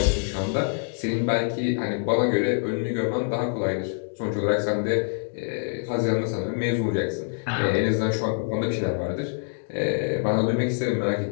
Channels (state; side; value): silent; right; digital silence